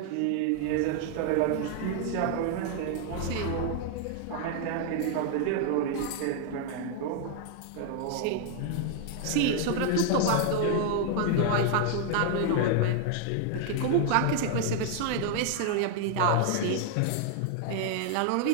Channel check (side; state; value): both; different; correlation 0.00